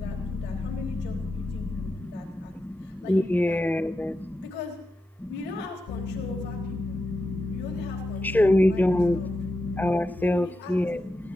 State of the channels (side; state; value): both; normal; correlation 0.89